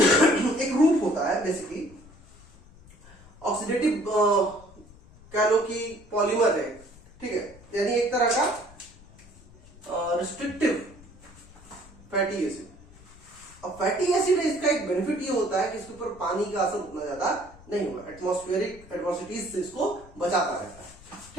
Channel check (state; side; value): noise; left; rumble, 23 dB below the sound